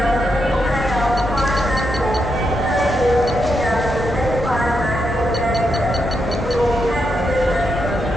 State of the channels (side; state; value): both; normal; correlation 0.83